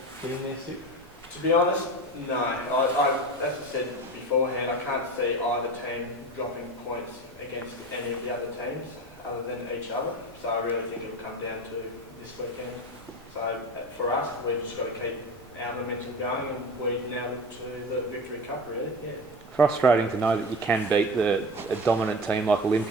getting there, Stu? To be honest, no. As I said beforehand, I can't see either team dropping points against any of the other teams other than each other. So I really think it'll come down to this weekend. So for us, we've just got to keep our momentum going and we now look to the Victory Cup, really. Yeah. Frustrating to know that you can beat a dominant team like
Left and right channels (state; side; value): normal; both; correlation 0.29